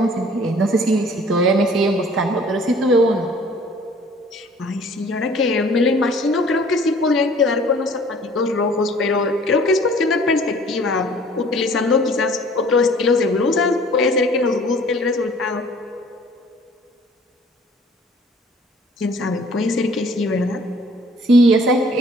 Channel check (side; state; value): both; normal; correlation 0.53